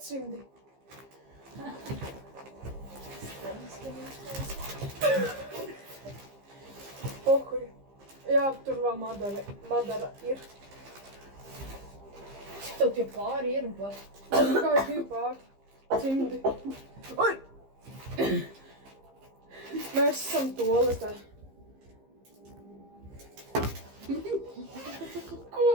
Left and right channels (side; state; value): left; late; 15 ms